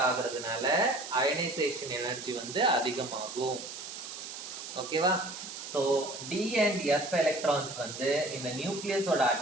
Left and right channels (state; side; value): noise; right; hiss, 10 dB below the sound